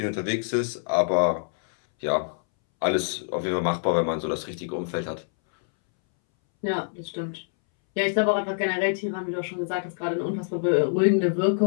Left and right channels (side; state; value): right; silent; 61 dB below the other